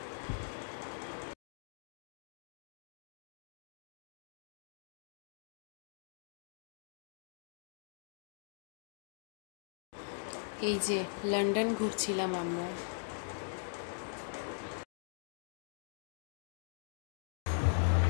এই যে লন্ডন ঘুরছিলাম আমরা।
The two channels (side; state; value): right; silent; digital silence